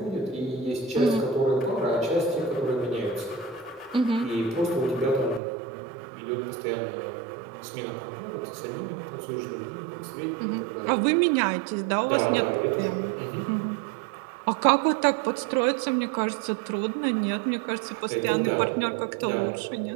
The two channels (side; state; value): left; drops out; at 5.4 s